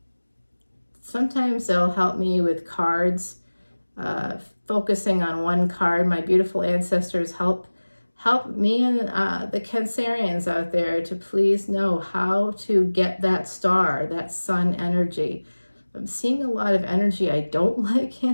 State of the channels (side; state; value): both; inverted; correlation -1.00